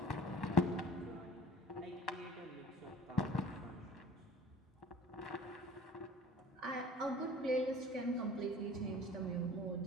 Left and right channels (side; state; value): both; normal; correlation 0.45